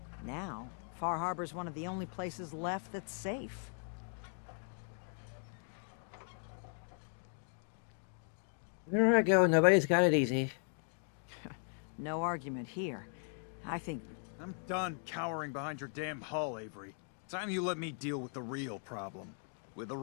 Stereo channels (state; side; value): silent; right; 52 dB below the other